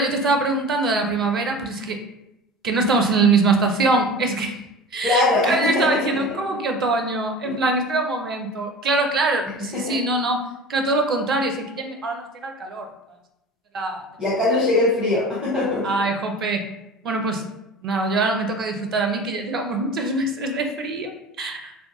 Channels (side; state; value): both; normal; correlation 0.37